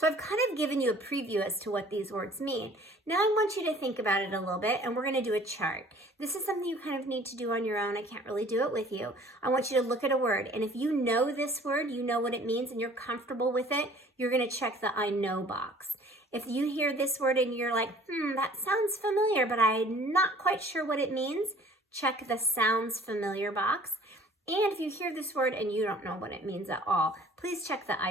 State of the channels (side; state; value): both; normal; correlation 0.52